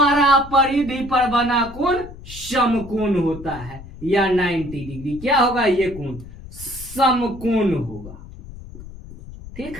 परिधि पर बना कोण समकोण होता है, या 90 डिग्री। क्या होगा? ये कोण समकोण होगा। ठीक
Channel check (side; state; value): left; noise; rumble, 15 dB below the sound